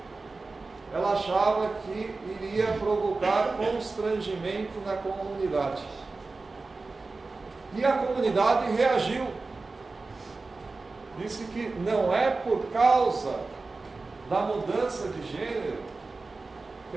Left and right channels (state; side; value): quieter; left; 3.7 dB